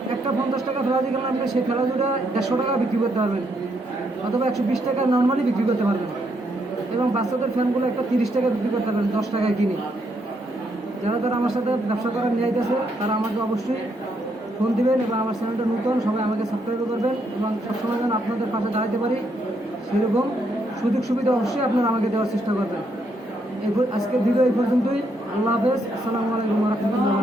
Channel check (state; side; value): normal; both; correlation 0.75